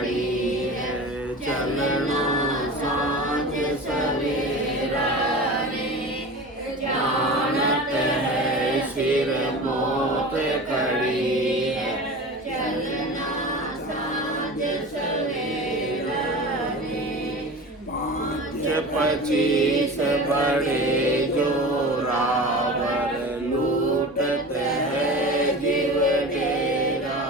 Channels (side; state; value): both; normal; correlation 0.33